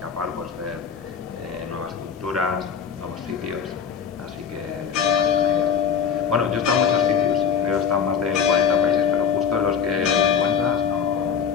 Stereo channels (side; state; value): right; quieter; 7.3 dB